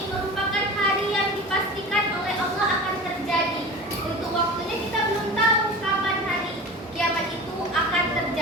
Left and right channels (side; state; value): both; normal; correlation 0.34